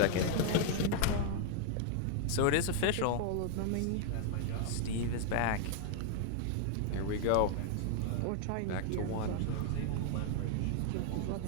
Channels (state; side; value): different; both; correlation 0.00